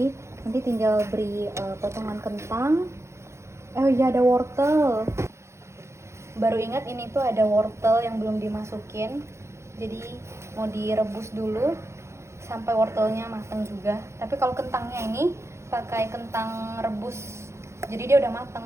nanti tinggal beri potongan kentang. Oh iya, ada wortel. Baru ingat ini tuh ada wortel yang belum dimasukin. Jadi mau direbus dulu sampai wortelnya matang juga. Tapi kalau kentangnya ini pakai kentang rebus, jadi dia udah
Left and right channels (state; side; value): late; left; 0.13 ms